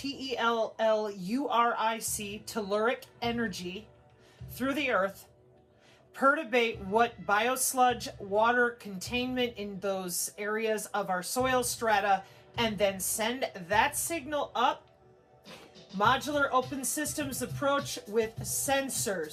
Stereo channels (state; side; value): identical; both; correlation 1.00